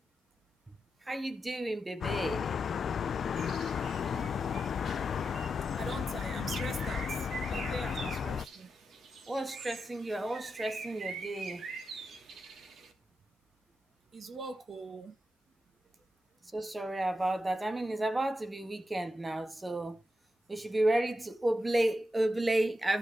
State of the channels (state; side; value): normal; both; correlation 0.87